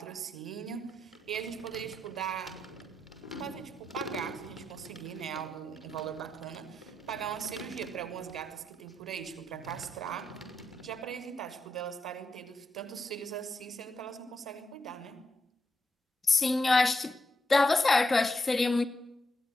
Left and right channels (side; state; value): both; normal; correlation 0.83